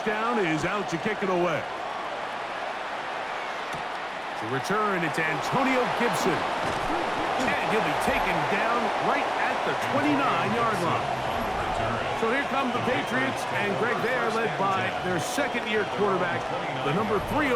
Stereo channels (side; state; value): both; identical; correlation 1.00